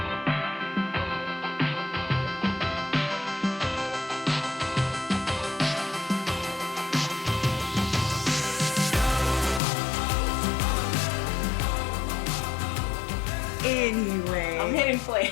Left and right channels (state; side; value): drops out; right; at 9.6 s